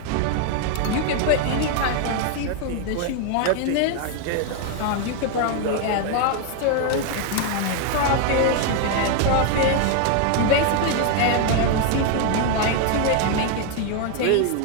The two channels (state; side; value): different; both; correlation 0.01